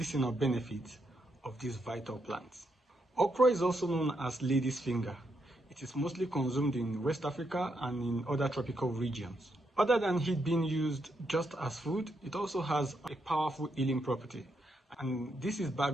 benefits of this vital plant. Okra is also known as lady's finger. It is mostly consumed in West Africa and in other tropical regions. Other than it being used just as food, it also has a powerful healing property, and this is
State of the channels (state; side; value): normal; both; correlation 0.80